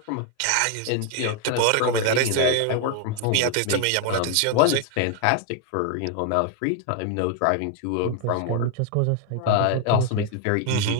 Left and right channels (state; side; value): different; both; correlation 0.01